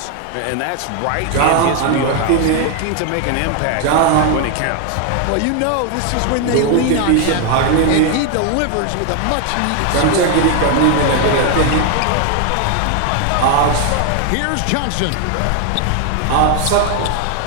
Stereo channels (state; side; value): different; both; correlation 0.01